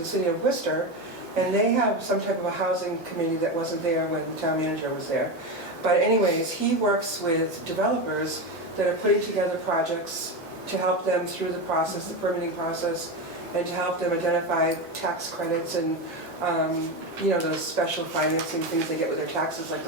city of Worcester, and they have some type of a housing committee that wasn't there when the town manager was there. But anyways, he works with developers that are putting together projects to help them through the process, the permitting process, and to help them identify tax credits and those special financing things they get with their taxes, like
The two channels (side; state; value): both; normal; correlation 0.16